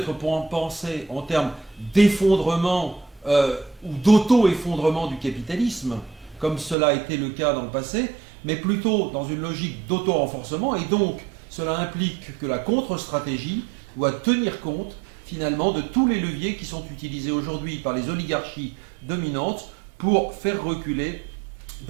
pensé en termes d'effondrement ou d'auto-effondrement du capitalisme, comme cela a été le cas dans le passé, mais plutôt dans une logique d'auto-renforcement. Et donc, cela implique que la contre-stratégie doit tenir compte finalement de tous les leviers qui sont utilisés aujourd'hui par les oligarchies dominantes pour faire reculer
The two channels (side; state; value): left; drops out; at 6.8 s